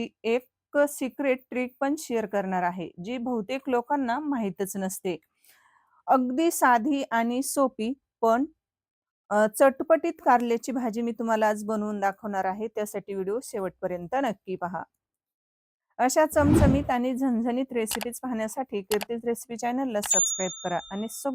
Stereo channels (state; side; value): normal; both; correlation 0.96